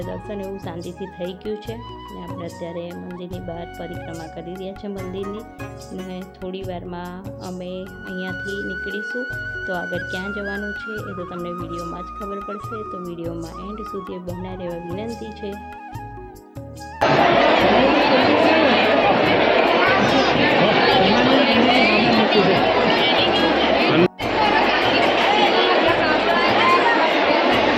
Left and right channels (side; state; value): both; identical; correlation 1.00